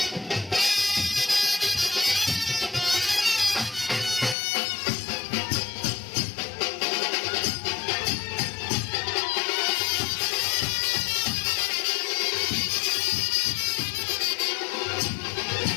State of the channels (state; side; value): drops out; right; at 4.4 s